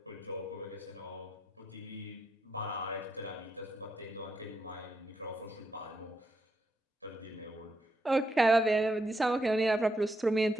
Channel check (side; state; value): both; normal; correlation 0.80